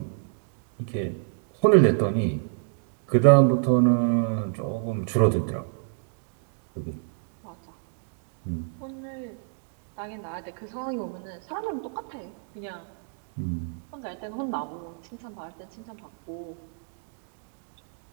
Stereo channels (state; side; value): silent; left; 59 dB below the other